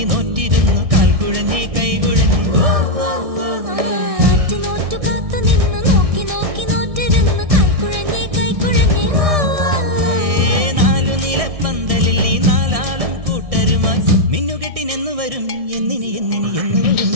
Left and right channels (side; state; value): left; late; 1.6 ms